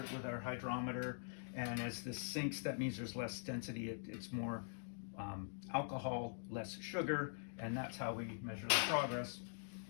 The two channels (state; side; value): silent; right; digital silence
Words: with our hydrometer. And as this sinks, that means there's less density. It's more alcohol, less sugar, and that's how we measure the progress.